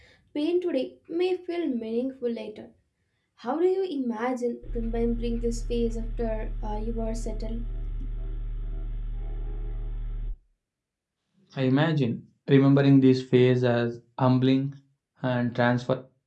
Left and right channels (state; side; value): identical; both; correlation 1.00